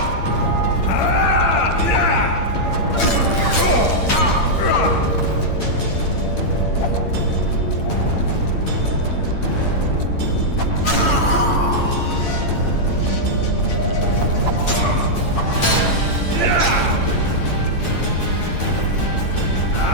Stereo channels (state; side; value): late; right; 8.8 ms